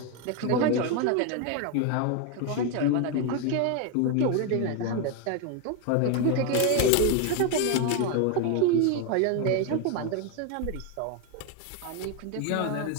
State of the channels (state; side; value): different; both; correlation 0.02